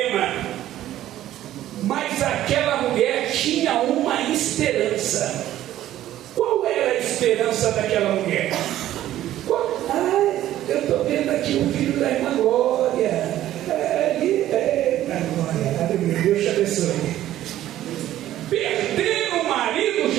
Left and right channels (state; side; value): quieter; left; 13.2 dB